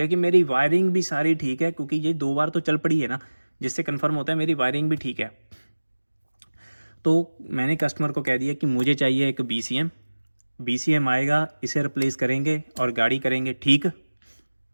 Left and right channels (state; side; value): inverted; both; correlation -1.00